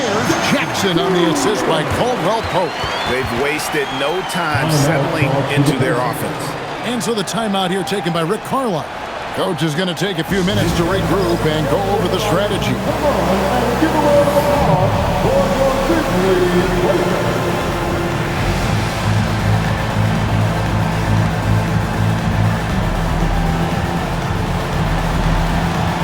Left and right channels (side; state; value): both; identical; correlation 1.00